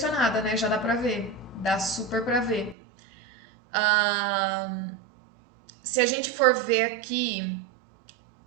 né? Já dá pra ver. Dá super pra ver. Se a gente for ver aqui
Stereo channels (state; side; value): drops out; left; at 2.8 s